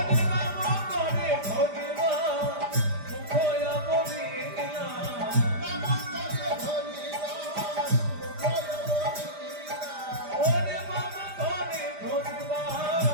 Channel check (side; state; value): left; late; 5.0 ms